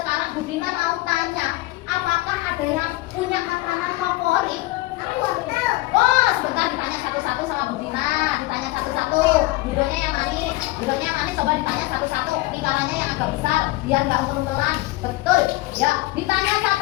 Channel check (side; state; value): right; quieter; 19.4 dB